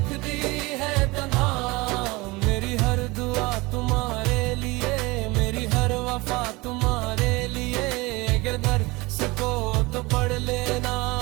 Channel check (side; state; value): left; quieter; 23.3 dB